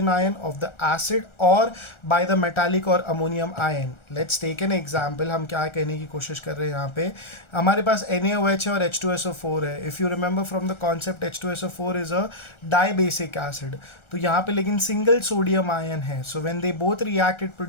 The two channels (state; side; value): late; right; 1.4 ms